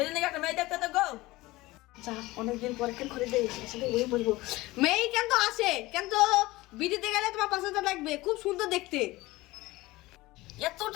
নাকি একটা মেয়ে দেখতে তো গো। যা, অনেকদিন পরে কেন করে দেয়, সেটা ওই বলবো। মেয়ে কিন্তু আসে, কিন্তু বিটিতে গেলে তোমার 5,000 লাগবে, খুব সুন্দর দেখতে। এত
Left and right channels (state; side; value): quieter; right; 19.6 dB